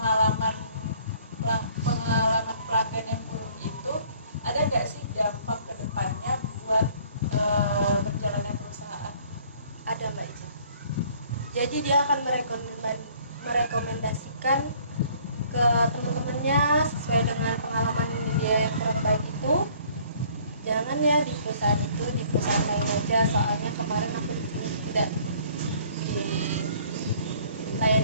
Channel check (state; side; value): inverted; both; correlation -0.57